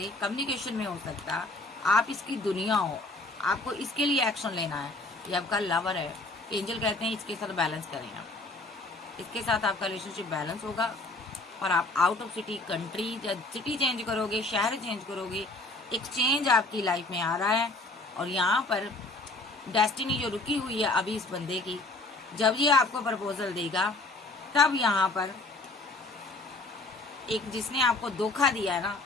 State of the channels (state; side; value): quieter; right; 3.0 dB